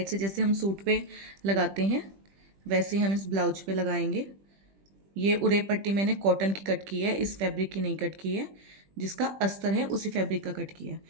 से जैसे हम सूट पे लगाते हैं वैसे ही हम इस ब्लाउज पे लगाएंगे। ये उड़ेप पट्टी मैंने कॉटन की कट की है, इस फैब्रिक की नहीं कट की है। जिसका अस्तर है उसी फैब्रिक का कट किया है।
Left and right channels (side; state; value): left; late; 20 ms